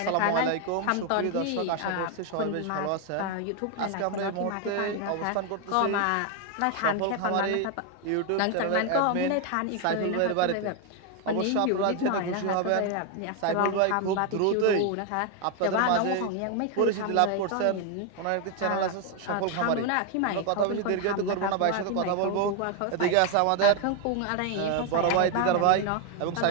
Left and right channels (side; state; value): both; different; correlation 0.01